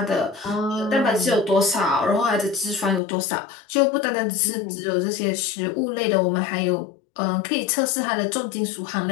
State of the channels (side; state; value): right; drops out; at 3.0 s